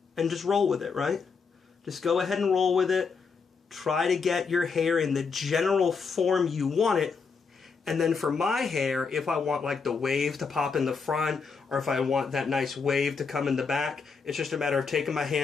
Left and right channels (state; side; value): quieter; right; 5.3 dB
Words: and just roll with it, right? Just go ahead and roll with it. Try to get your hair in the general form you want it. And then for my hair, if I want like the wave to pop in the front, or if I want that nice wave to come in the back, it's just a matter of taking my